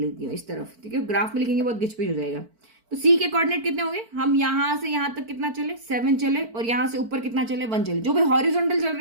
हूँ इस तरफ, ठीक है, ग्राफ में लिखेंगे बहुत गिचपिच हो जाएगा। तो C के कोऑर्डिनेट कितने होंगे, हम यहाँ से यहाँ तक कितना चले, 7 चले, और यहाँ से ऊपर कितना चले, 1 चले। जो भी हॉरिजॉन्टल चल रहे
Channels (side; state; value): left; late; 4.5 ms